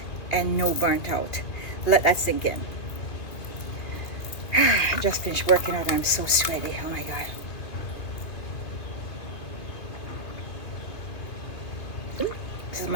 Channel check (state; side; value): late; right; 2.4 ms